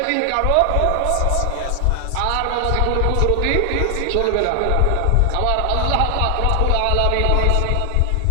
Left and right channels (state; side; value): different; both; correlation 0.00